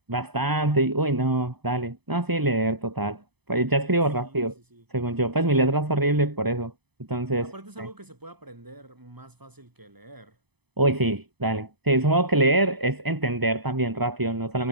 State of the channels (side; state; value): left; late; 0.98 ms